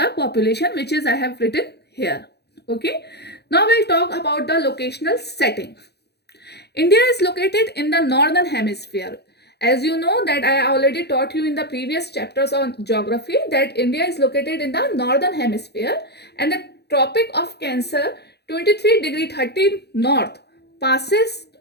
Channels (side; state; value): right; late; 0.48 ms